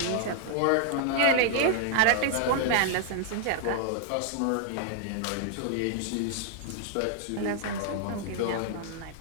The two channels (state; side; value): different; both; correlation 0.00